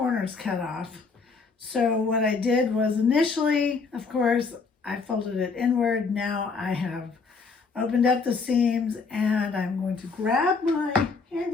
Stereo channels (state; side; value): quieter; right; 4.6 dB